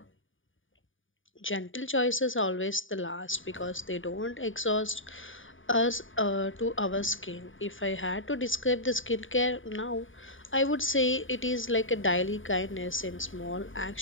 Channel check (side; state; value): right; late; 0.57 ms